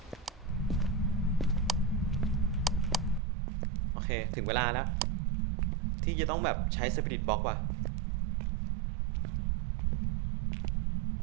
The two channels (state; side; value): drops out; left; at 3.2 s